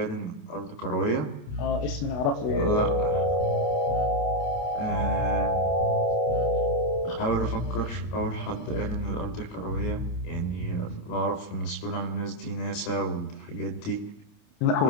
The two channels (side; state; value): right; late; 29 ms